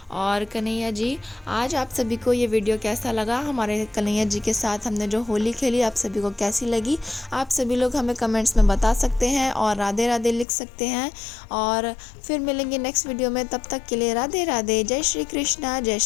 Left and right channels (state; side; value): drops out; right; at 10.5 s